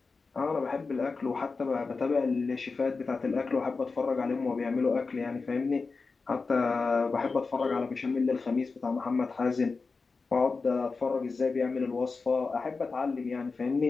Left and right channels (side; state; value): right; quieter; 4.3 dB